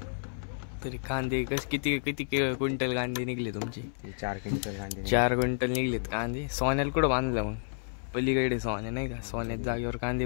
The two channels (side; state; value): right; silent; 57 dB below the other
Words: तरी कांदे किती किती क्विंटल कांदे निघले तुमचे? 4 क्विंटल कांदे. 4 क्विंटल निघलेत कांदे. सोन्याला कुठं बांधलं मग? पलीकडे सोन्या नाही का, सोन्यात जागेवर कांदे